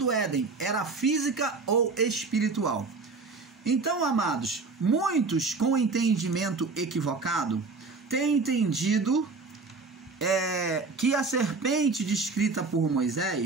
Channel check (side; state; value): left; quieter; 4.1 dB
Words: Éden era física ou espiritual? Então, amados, muitos com entendimento equivocado têm entendido que a serpente descrita por